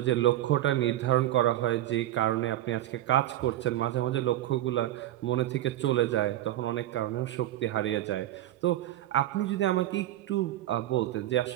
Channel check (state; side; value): quieter; left; 13.8 dB